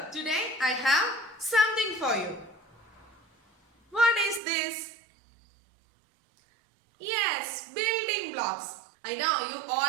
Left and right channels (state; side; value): drops out; left; at 4.4 s